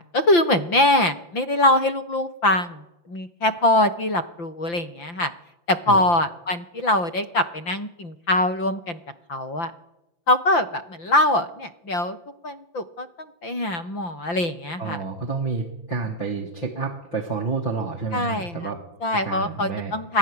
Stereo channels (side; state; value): right; late; 5.8 ms